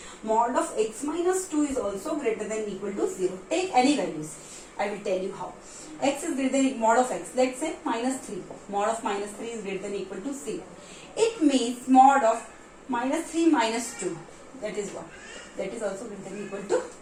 mod of x minus 2 is also greater than equal to 0. Take any values. I will tell you how. X is greater than mod of x. Let's say minus 3. Mod of minus 3 is greater than equal to 0. It means mod of minus 3 minus 2. That is what? That is also greater than equal to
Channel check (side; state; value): both; identical; correlation 1.00